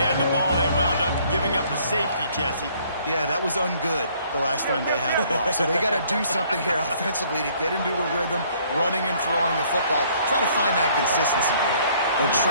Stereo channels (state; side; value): inverted; both; correlation -0.61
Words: had the ball, they wound up giving up a safety, Jesse. Yeah, that was ungood the last time they had the ball. So they got to do something here offensively to get into a rhythm, running and throwing the football. Try to find that consistency there. And